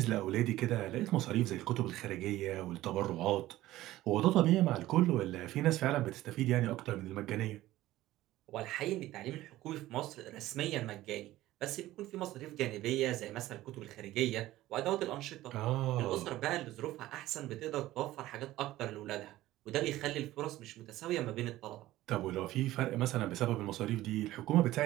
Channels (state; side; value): quieter; left; 15.8 dB